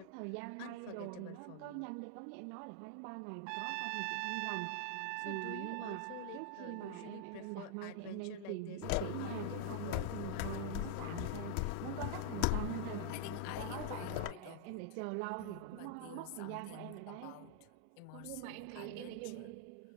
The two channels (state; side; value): different; both; correlation 0.00